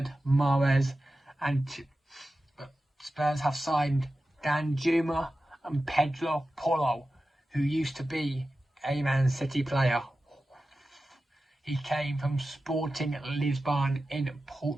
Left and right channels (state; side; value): normal; both; correlation 0.94